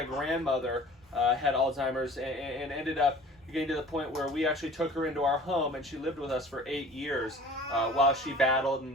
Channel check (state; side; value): normal; both; correlation 0.46